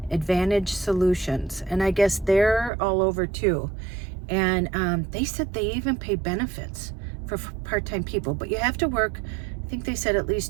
Advantage Solutions, and I guess they're all over too. And they said they even pay benefits for part-time people, but you have to work, I think they said at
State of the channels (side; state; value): left; drops out; at 2.7 s